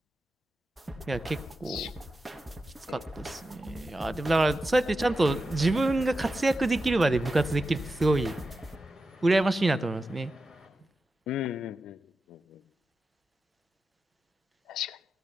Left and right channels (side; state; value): both; normal; correlation 0.91